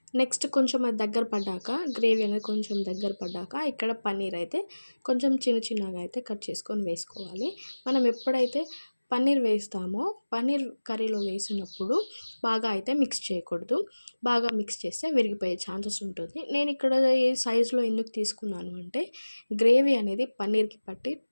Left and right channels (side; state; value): both; inverted; correlation -1.00